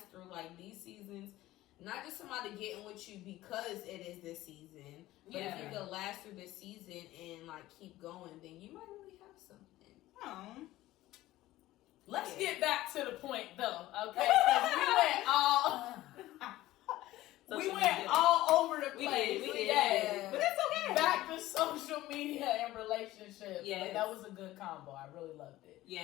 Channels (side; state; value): right; quieter; 16.2 dB